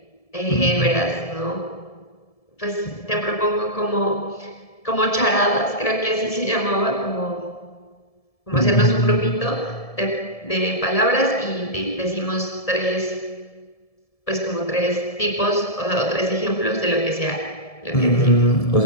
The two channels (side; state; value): right; late; 1.7 ms